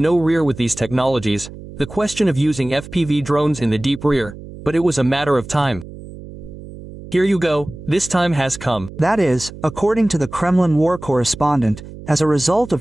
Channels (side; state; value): right; noise; hum, 15 dB below the sound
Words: rear with these technologies, the question of using FPV drones in the deep rear, but it was a matter of time. Here you go, this time has come. That is, according to the Kremlin war correspondent, as a result